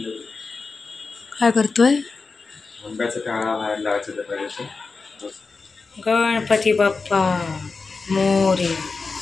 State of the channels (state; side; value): quieter; right; 4.3 dB